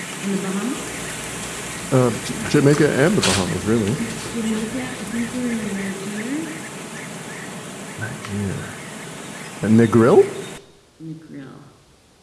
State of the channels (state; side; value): identical; both; correlation 1.00